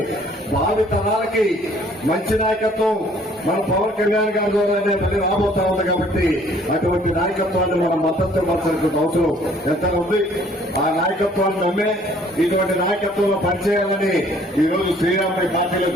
భావి తరాలకి మంచి నాయకత్వం మన పవన్ కళ్యాణ్ గారి ద్వారానే మళ్ళీ రాబోతా ఉంది. కాబట్టి అటువంటి నాయకత్వాన్ని మనం మద్దతు ఇవ్వాల్సిన అవసరం ఎంత ఉంది. ఆ నాయకత్వాన్ని నమ్మే ఇటువంటి నాయకత్వంలో పనిచేయాలని ఈ రోజు శ్రీరాముడి పార్టీలో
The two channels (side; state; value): both; normal; correlation 0.58